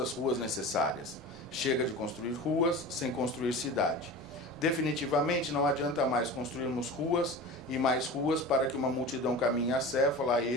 ruas necessárias. Chega de construir ruas sem construir cidade. Definitivamente não adianta mais construirmos ruas e mais ruas para que uma multidão caminhe acéfala, a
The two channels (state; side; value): noise; right; rumble, 23 dB below the sound